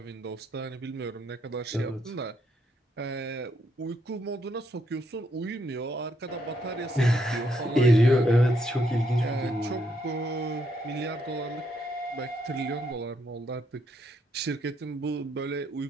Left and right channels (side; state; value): both; normal; correlation 0.75